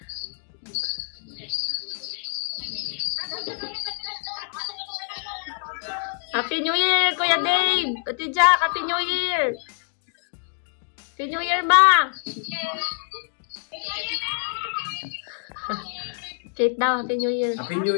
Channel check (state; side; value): silent; right; digital silence